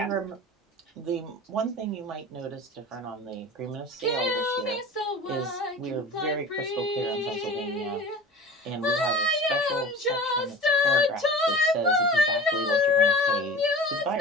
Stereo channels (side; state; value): both; normal; correlation 0.37